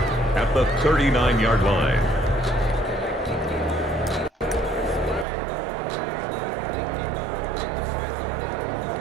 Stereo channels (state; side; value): drops out; left; at 5.2 s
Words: at the 39-yard line.